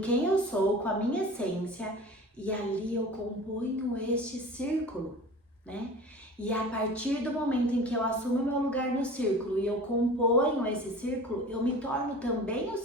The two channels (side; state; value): both; normal; correlation 0.39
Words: eu sou, com a minha essência, e ali eu componho este círculo, né? E a partir do momento em que eu assumo meu lugar no círculo e eu componho esse círculo, eu me torno também o